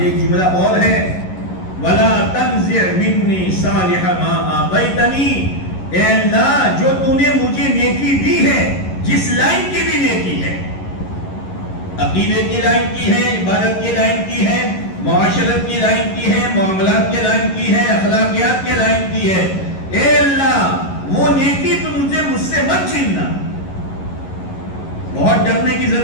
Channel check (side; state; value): right; late; 11 ms